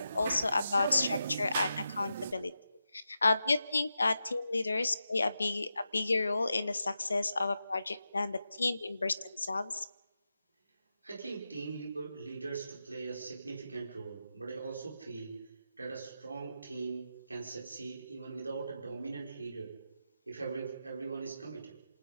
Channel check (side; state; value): both; inverted; correlation -0.89